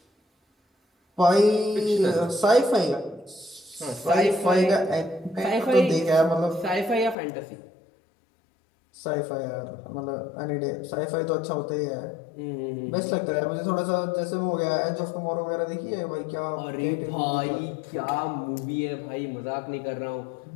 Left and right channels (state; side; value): drops out; right; at 7.2 s